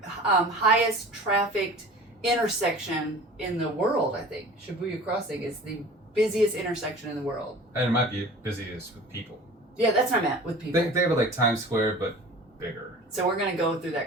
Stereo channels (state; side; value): normal; both; correlation 0.42